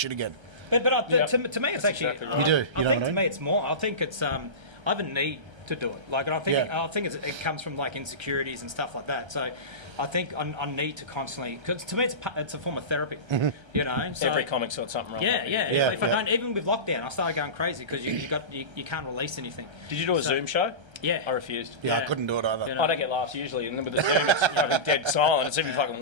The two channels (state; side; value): late; left; 1.3 ms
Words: again. But to me, it's actually exactly right. You do. I think to me, it's more. I think it's. I have a need to do it. Like, and I think it comes from like insecurities and stuff like that. So, I think I need to constantly, because to me it's a form of therapy. You know, so, Every comic's got something wrong. Yeah. Yeah, If I don't, even with lockdown, I started going crazy because you can't release anything. Did you do a Zoom show? Yeah. I refused. Yeah, I Yeah. couldn't do it either. You know. I don't get laughs usually, and then with the Zoom, it's fucking dead silent. It's even fucking